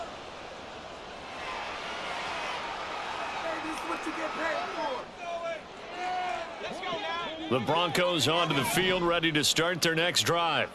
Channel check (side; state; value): both; identical; correlation 1.00